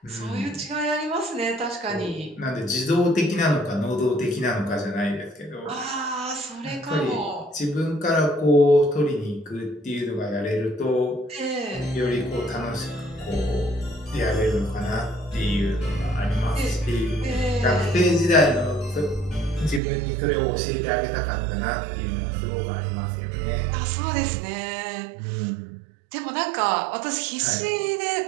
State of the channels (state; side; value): drops out; left; at 19.8 s